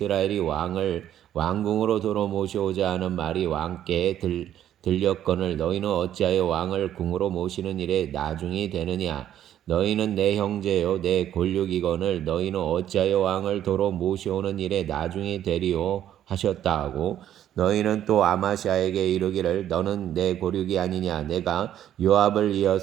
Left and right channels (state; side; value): quieter; left; 11.1 dB